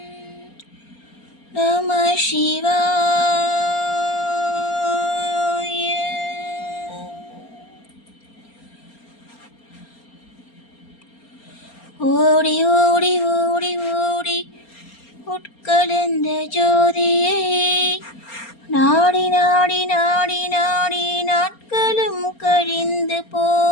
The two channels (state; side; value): late; right; 4.3 ms